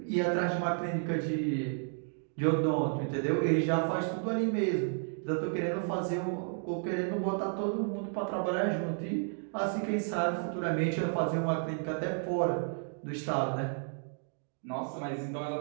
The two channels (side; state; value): left; silent; 56 dB below the other